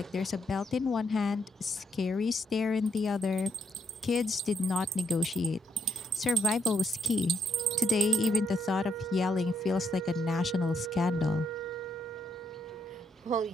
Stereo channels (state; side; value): normal; both; correlation 0.76